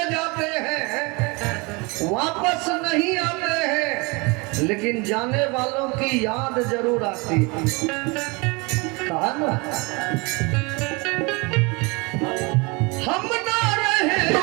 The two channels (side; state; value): left; quieter; 27.7 dB